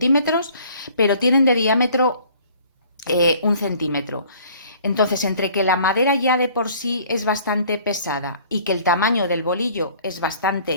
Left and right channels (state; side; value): inverted; both; correlation -0.54